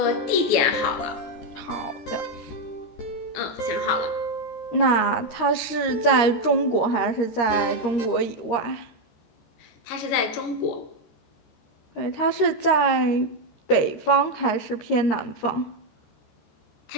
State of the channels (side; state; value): right; late; 13 ms